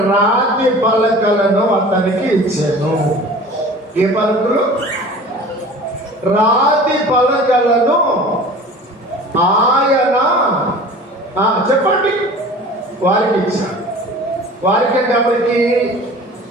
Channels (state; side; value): normal; both; correlation 0.41